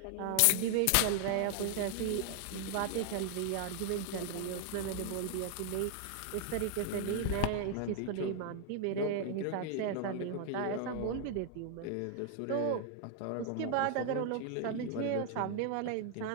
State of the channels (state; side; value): different; both; correlation 0.00